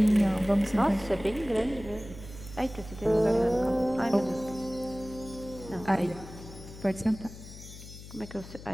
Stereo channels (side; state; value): left; noise; hum, 15 dB below the sound